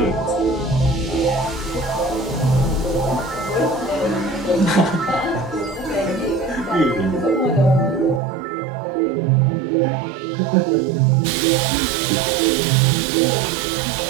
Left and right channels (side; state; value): left; drops out; at 8.2 s